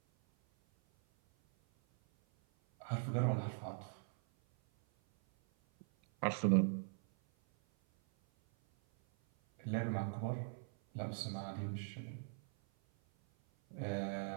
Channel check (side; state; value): left; silent; 51 dB below the other